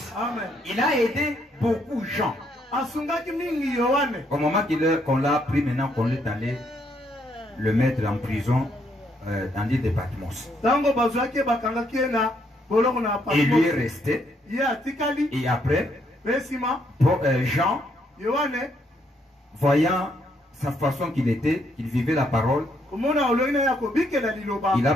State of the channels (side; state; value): both; normal; correlation 0.73